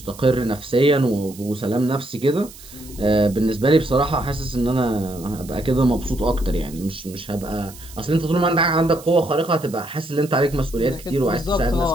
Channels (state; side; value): noise; right; hiss, 19 dB below the sound